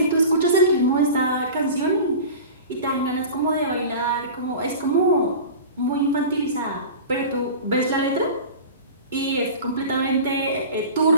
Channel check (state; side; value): inverted; both; correlation -0.35